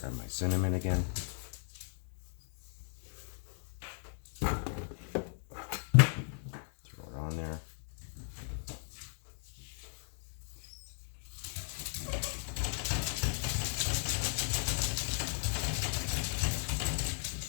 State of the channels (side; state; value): right; silent; digital silence